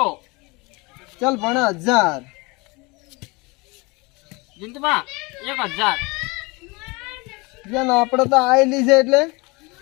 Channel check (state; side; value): quieter; right; 26.2 dB